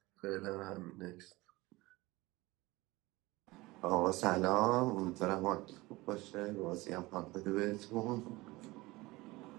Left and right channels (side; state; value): left; quieter; 21.0 dB